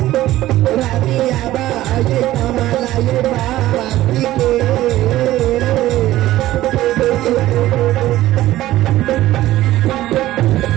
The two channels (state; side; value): quieter; left; 15.2 dB